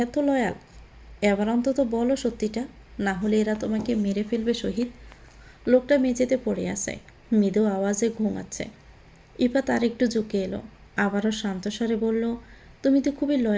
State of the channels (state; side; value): identical; both; correlation 1.00